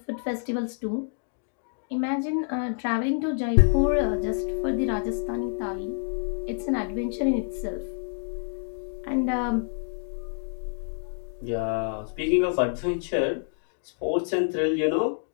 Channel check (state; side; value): silent; right; digital silence